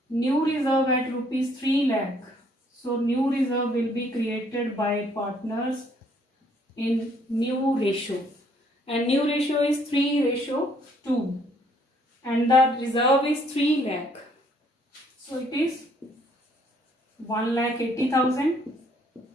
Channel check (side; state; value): both; normal; correlation 0.65